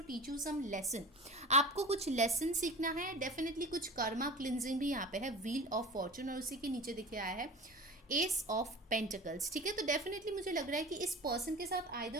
teach you some lesson. आपको कुछ लेसन सीखना है, डेफिनेटली कुछ कर्मा क्लिनजिंग भी यहाँ पे है। व्हील ऑफ फॉर्चून और उसी के नीचे दिखे आया है एस ऑफ पेंटिकल्स, ठीक है। तो डेफिनेटली मुझे लग रहा है कि इस पर्सन के साथ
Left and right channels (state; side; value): normal; both; correlation 0.35